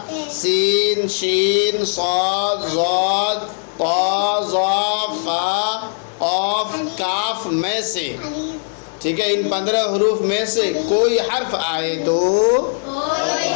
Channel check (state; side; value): silent; right; 66 dB below the other